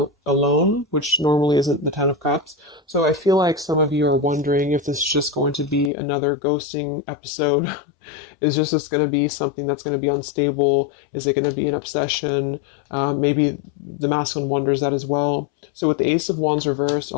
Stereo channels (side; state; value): right; drops out; at 5.9 s